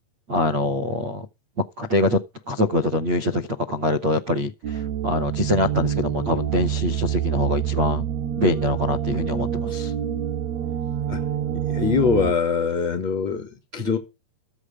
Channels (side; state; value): left; late; 8.6 ms